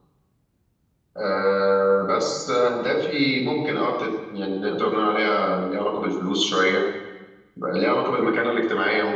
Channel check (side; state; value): both; identical; correlation 1.00